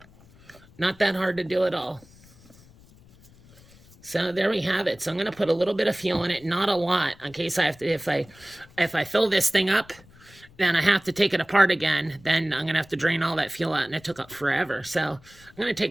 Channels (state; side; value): noise; left; rumble, 25 dB below the sound